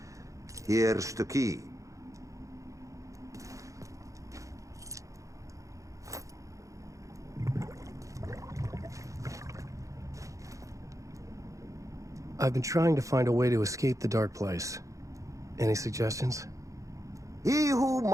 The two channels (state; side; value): late; left; 0.15 ms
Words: Here's the key. I've been trying to find a way to escape the dark place. Any suggestions? He who